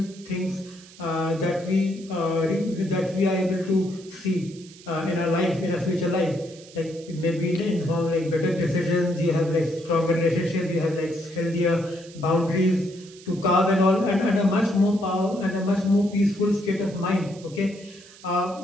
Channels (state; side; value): noise; right; hiss, 21 dB below the sound